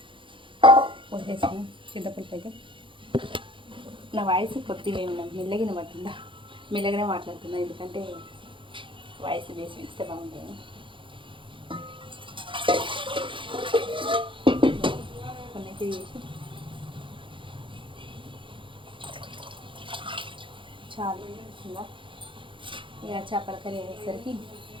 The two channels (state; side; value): late; left; 0.25 ms